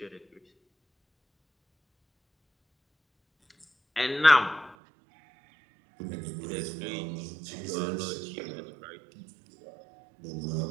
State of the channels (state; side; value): drops out; left; at 4.8 s